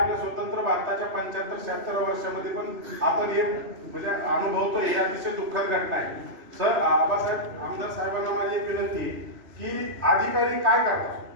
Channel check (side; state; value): left; late; 3.0 ms